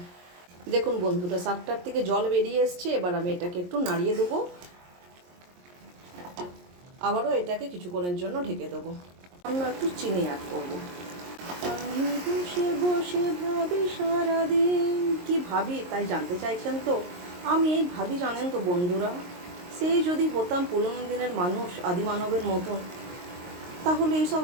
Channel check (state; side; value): late; left; 22 ms